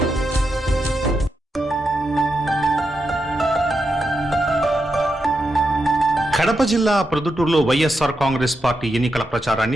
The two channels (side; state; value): both; normal; correlation 0.86